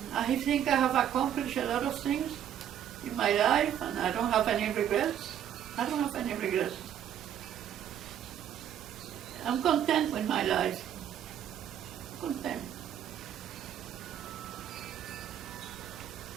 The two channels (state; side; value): quieter; left; 10.0 dB